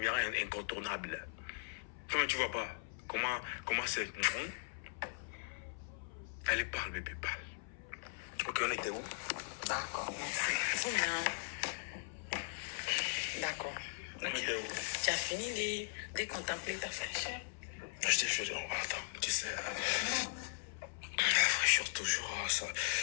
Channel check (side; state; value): right; silent; 52 dB below the other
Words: incontournable. Comment tu vois pas? Comment c'est? Allez, parle, bébé, parle. Ok, on était où? D'accord, merci. Faut bien. D'accord. On était où? Tu as fini de contempler ta fraîcheur? Je t'ai fait. Attends, tu sais. La fraîcheur, toujours, ça